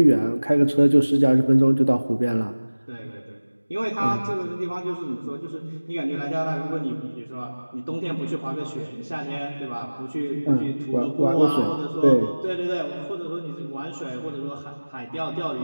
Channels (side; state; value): both; inverted; correlation -1.00